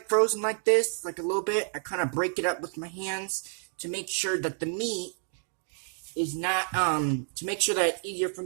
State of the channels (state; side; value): silent; left; 58 dB below the other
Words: frozen like this, like a little bit, I kind of break it up with my hands to make sure that the meat is not, to make sure that it's easier for